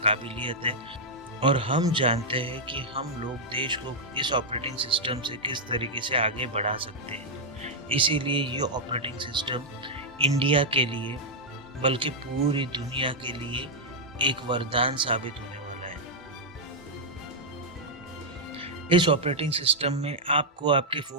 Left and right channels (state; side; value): normal; both; correlation -0.04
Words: है और हम जानते हैं कि हम लोग देश को इस ऑपरेटिंग सिस्टम से किस तरीके से आगे बढ़ा सकते हैं। इसीलिए ये ऑपरेटिंग सिस्टम इंडिया के लिए बल्कि पूरी दुनिया के लिए एक वरदान साबित होने वाला है। इस ऑपरेटिंग सिस्टम में आपको आपके